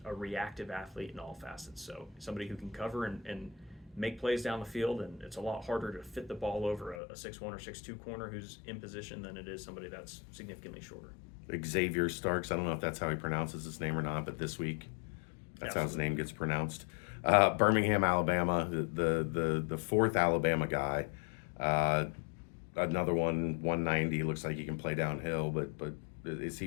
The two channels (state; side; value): drops out; right; at 7.0 s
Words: a reactive athlete in all facets. So somebody who can cover and make plays down the field, and it's a lot harder to fit the ball over a 6'1" or 6'2" corner who's in position than it is somebody that's significantly shorter. Xavier Starks, I don't know if that's how he pronounces his name or not, but this week that's how his name gets pronounced. Birmingham, Alabama, the fourth Alabama guy. Another one, 190, looks like he can play downhill, but is he